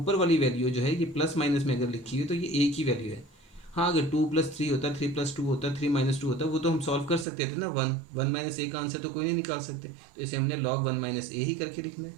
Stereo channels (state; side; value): drops out; left; at 7.2 s